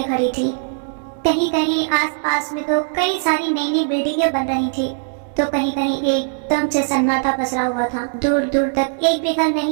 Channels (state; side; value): silent; left; digital silence